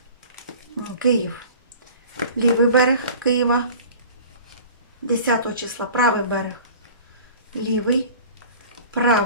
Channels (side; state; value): both; inverted; correlation -0.43